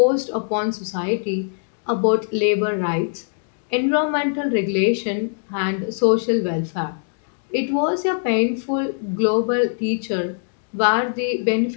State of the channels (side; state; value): right; silent; digital silence